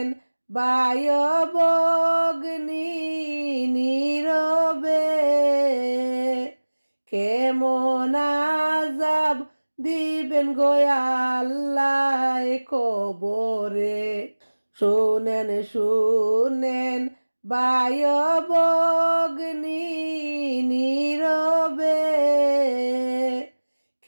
ভাই ভগ্নী নীরবে, কেমন আযাব দিবেন গো আল্লাহ কবরে। শোনেন শোনেন ভাই ভগ্নী নীরবে,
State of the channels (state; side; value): inverted; both; correlation -1.00